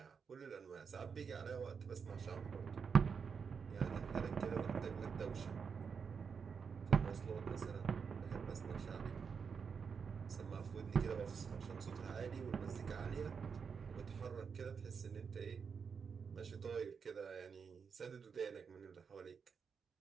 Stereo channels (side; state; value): left; quieter; 6.1 dB